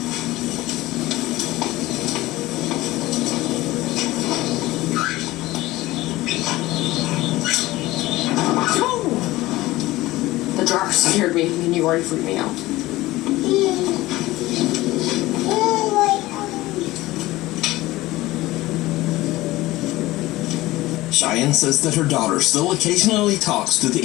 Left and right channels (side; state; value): right; quieter; 18.1 dB